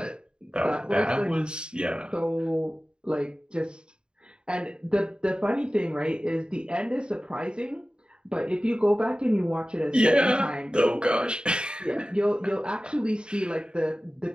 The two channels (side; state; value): left; late; 0.050 ms